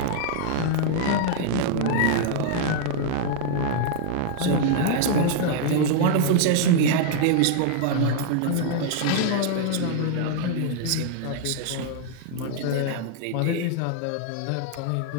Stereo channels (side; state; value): both; different; correlation 0.00